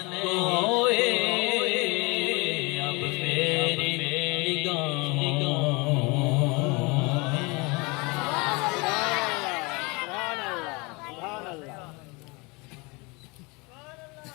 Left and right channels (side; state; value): right; quieter; 27.2 dB